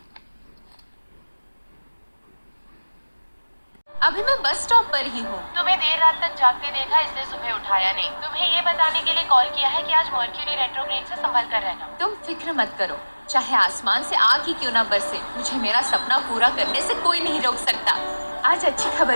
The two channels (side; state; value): both; inverted; correlation -1.00